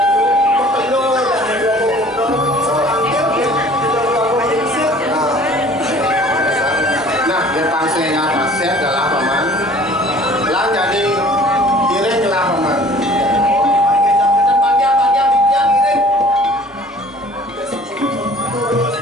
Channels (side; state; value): both; normal; correlation 0.50